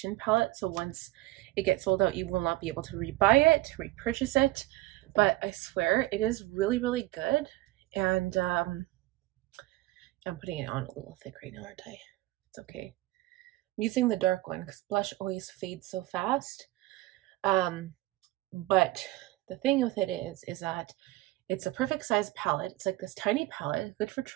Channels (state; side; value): quieter; left; 18.1 dB